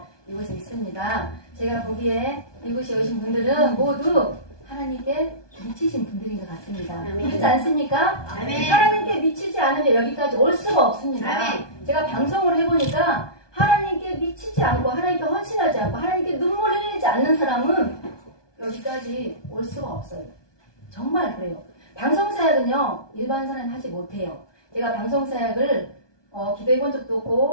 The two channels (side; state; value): right; late; 1.2 ms